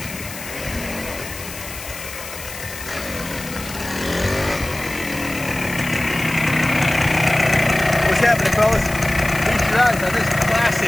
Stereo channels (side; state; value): left; noise; hiss, 12 dB below the sound